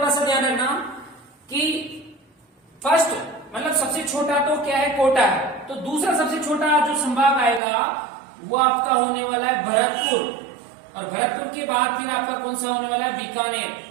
सा ध्यान रखना कि फर्स्ट मतलब सबसे छोटा तो क्या है? कोटा है। तो दूसरा सबसे छोटा जो संभाग आएगा वो आपका होने वाला है भरतपुर, और भरतपुर के बाद फिर आपका कौन सा होने वाला है? बीकानेर।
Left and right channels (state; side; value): drops out; left; at 7.6 s